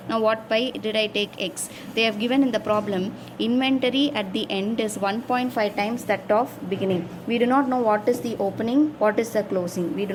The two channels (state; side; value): identical; both; correlation 1.00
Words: Now why did I take x? They have given in the problem inventory at the end is 1.5 times that of beginning. We do not know what is the opening, what is the closing. We do